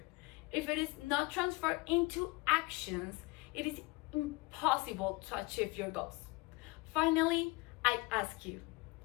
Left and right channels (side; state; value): right; quieter; 24.1 dB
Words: if it is not transferred into actions, it is impossible to achieve your goals. Finally, I ask you,